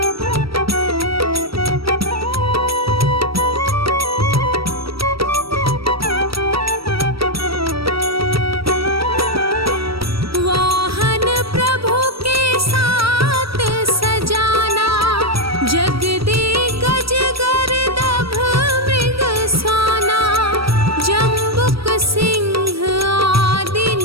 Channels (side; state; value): left; late; 0.75 ms